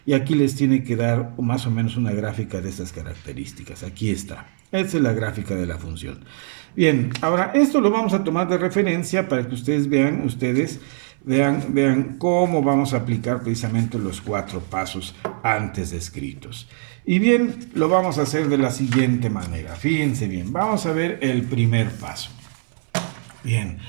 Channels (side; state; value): left; silent; 64 dB below the other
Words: y aquí les tiene que dar más o menos una gráfica de estas características. Aquí está. Esta es la gráfica de la función. Bien, ahora esto lo vamos a tomar de referencia para que ustedes vean cómo vamos a aplicar precisamente los 4 pasos antes descritos. Y bien, lo vamos a hacer de la siguiente manera. Fíjense bien, vamos a ver el primer paso. Bien,